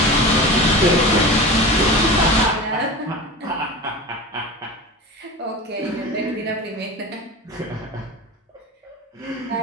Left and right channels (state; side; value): normal; both; correlation 0.31